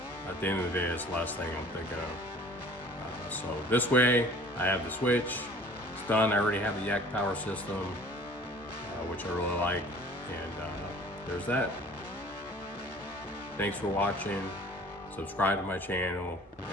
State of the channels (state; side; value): normal; both; correlation 0.49